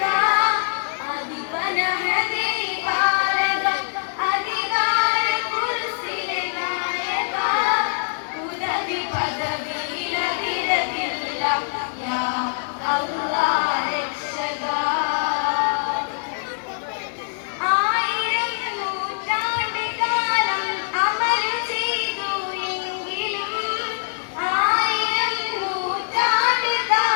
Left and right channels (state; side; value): silent; right; digital silence